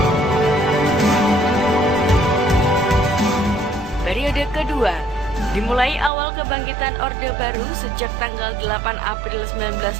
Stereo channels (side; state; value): left; drops out; at 6.1 s